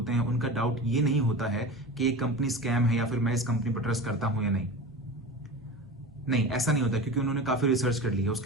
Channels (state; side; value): normal; both; correlation 0.31